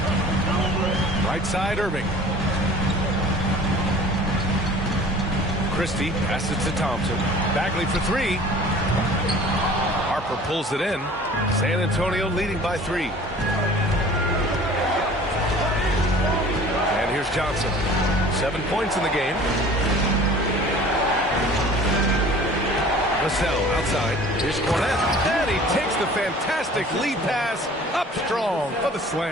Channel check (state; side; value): normal; both; correlation 0.46